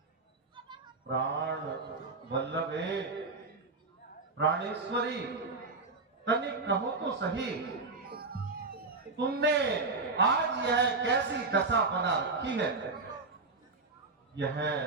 प्राण वल्लभे प्राणेश्वरी तनिक कहो तो सही तुमने आज यह कैसी दशा बना रखी है यह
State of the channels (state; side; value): quieter; left; 3.8 dB